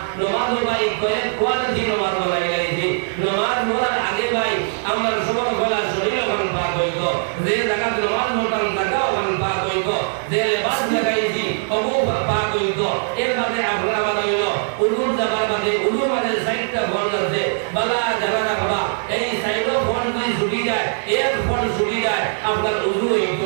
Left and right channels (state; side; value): silent; left; 65 dB below the other